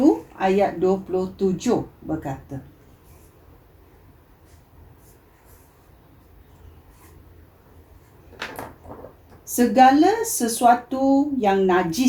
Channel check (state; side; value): identical; both; correlation 1.00